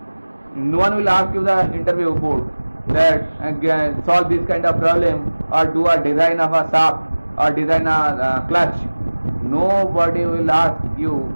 No one will ask you the interview board that solve this kind of problem or do a design of a shaft or design a clutch. Nobody will ask you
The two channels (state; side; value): inverted; both; correlation -1.00